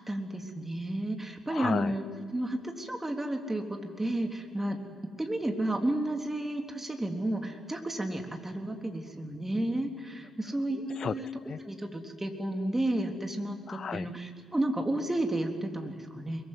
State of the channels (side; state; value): both; normal; correlation 0.90